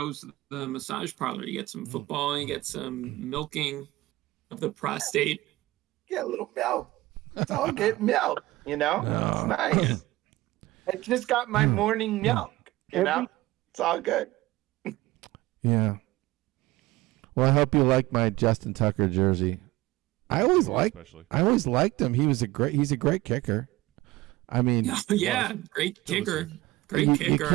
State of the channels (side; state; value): left; quieter; 18.7 dB